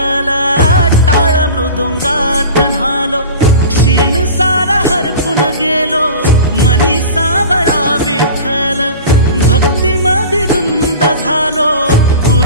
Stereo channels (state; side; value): inverted; both; correlation -0.35